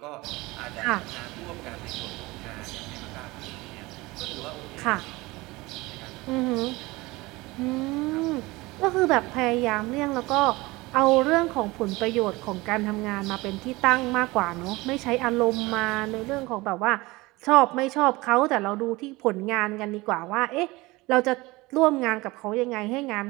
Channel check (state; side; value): quieter; left; 21.7 dB